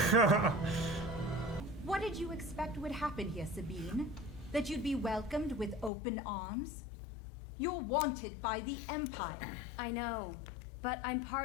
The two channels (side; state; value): right; drops out; at 5.9 s